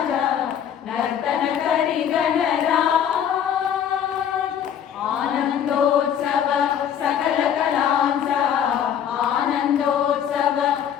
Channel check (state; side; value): quieter; right; 9.0 dB